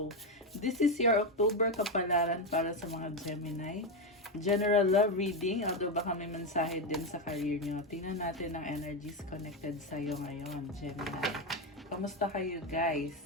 This is your October kapalaran para sa mga Gemini. General love reading, although baka may mensahe din sa career nyo. Tingnan natin ang energies connected sa'yo ngayon, Gemini. Kamusta kayo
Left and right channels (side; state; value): both; normal; correlation 0.09